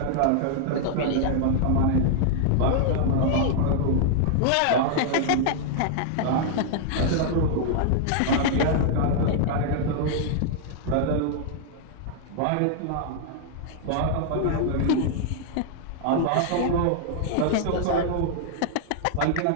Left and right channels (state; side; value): different; both; correlation -0.01